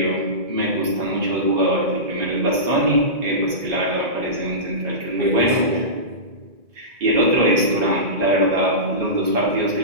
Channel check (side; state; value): left; late; 2.6 ms